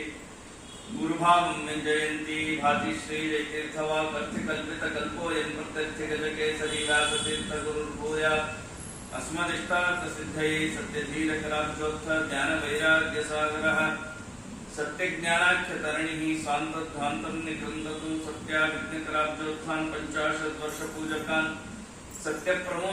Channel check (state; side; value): identical; both; correlation 1.00